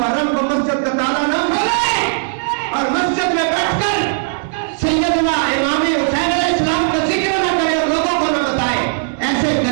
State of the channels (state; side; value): silent; left; 68 dB below the other